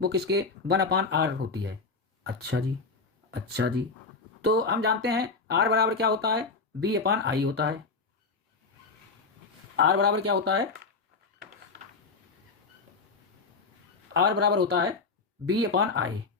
वो किसके? 1/R होती है। अच्छा जी, तो हम जानते हैं R बराबर क्या होता है? B/I होता है। R बराबर क्या होता है? R बराबर होता है B/I।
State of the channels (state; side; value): quieter; right; 4.4 dB